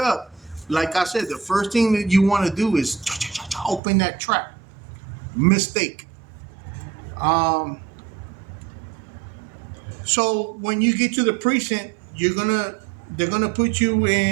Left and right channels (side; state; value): left; drops out; at 3.8 s